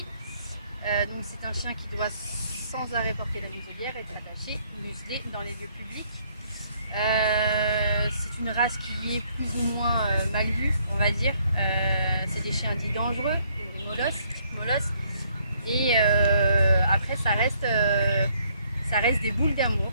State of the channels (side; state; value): both; inverted; correlation -0.67